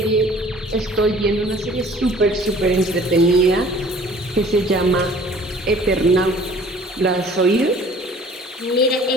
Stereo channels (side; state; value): both; normal; correlation 0.51